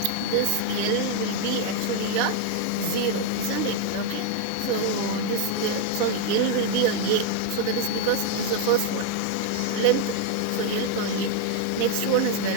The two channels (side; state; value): both; different; correlation 0.01